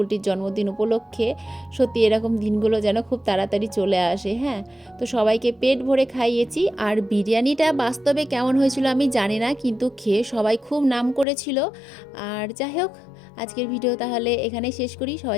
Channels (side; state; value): right; drops out; at 11.2 s